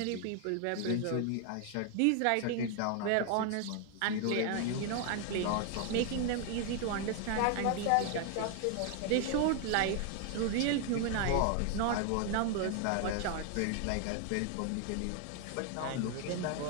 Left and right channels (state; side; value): different; both; correlation 0.00